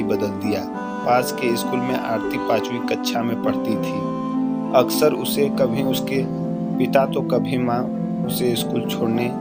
बदल दिया। पास के स्कूल में आरती 5वीं कक्षा में पढ़ती थी। अक्सर उसे कभी उसके पिता तो कभी माँ उसे स्कूल छोड़ने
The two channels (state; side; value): identical; both; correlation 1.00